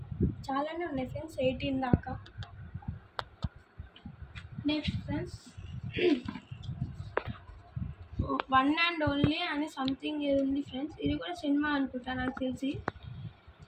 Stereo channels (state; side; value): identical; both; correlation 1.00